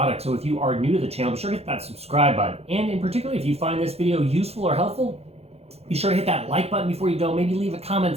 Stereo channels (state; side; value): late; left; 0.30 ms